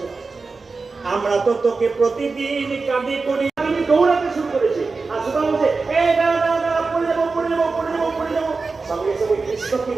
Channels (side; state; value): left; quieter; 4.2 dB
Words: আমরা তো তোকে প্রতিদিন কাঁদি করি। আমি দৌড়াতে শুরু করেছি। আর সুদামা বলছে এই দাঁড়া দাঁড়া দাঁড়া, পড়ে যাবো পড়ে যাবো পড়ে যাবো পড়ে যাবো। সঙ্গে সঙ্গে কৃষ্ণ কি